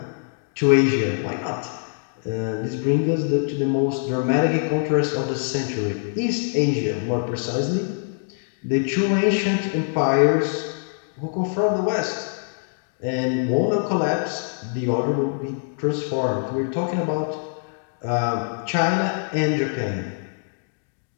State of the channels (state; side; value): silent; right; digital silence